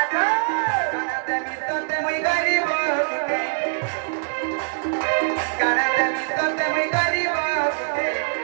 काना देमी तो ते मुई गरीब के काना देमी तो ते मुई गरीब के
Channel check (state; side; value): silent; left; digital silence